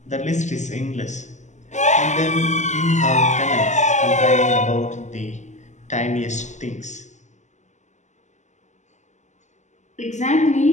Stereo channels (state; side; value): late; right; 0.34 ms